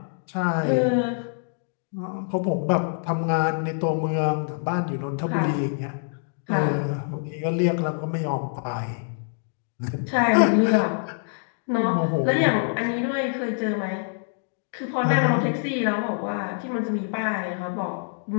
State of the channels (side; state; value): right; silent; digital silence